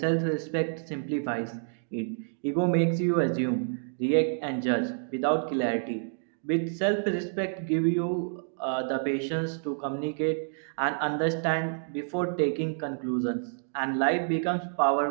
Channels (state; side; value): silent; left; digital silence